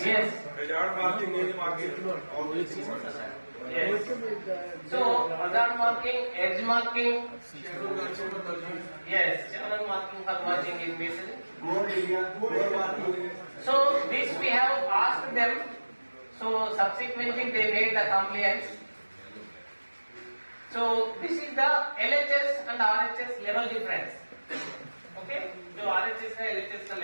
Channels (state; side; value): inverted; both; correlation -1.00